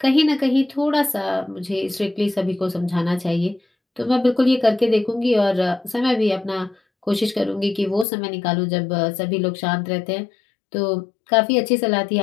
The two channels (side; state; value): right; drops out; at 8.1 s